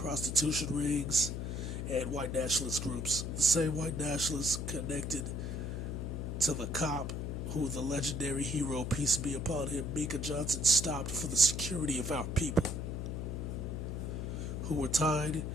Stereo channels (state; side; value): noise; left; hum, 3 dB below the sound